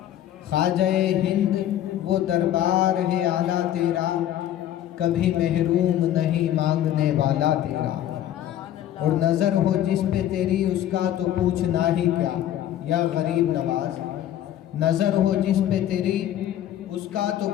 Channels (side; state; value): right; quieter; 11.8 dB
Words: خواجہ ہند وہ دربار ہے اعلیٰ تیرا، کبھی محروم نہیں مانگنے والا تیرا۔ اور نظر ہو جس پہ تیری اس کا تو پوچھنا ہی کیا، یا غریب نواز نظر ہو جس پہ تیری اس کا تو